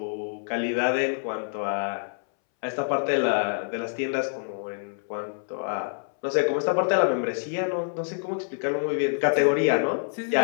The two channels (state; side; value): silent; right; 60 dB below the other